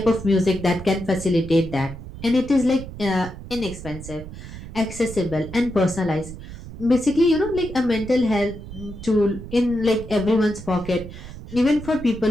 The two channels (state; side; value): noise; right; rumble, 12 dB below the sound